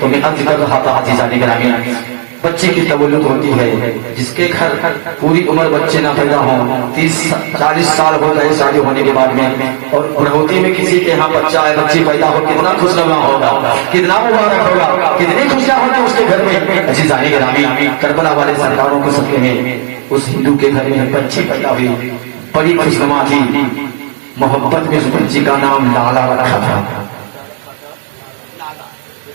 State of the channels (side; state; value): left; silent; digital silence